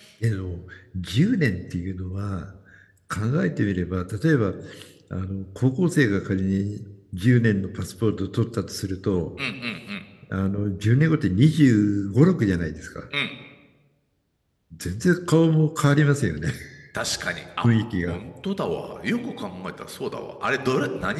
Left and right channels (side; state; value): both; identical; correlation 1.00